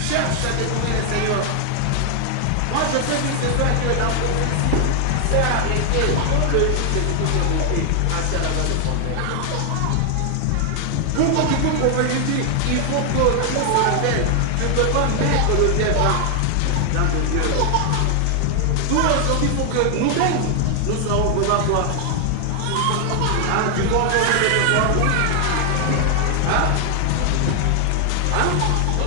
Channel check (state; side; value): different; both; correlation 0.00